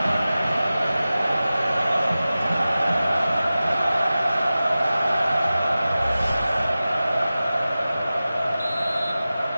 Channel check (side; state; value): both; inverted; correlation -0.96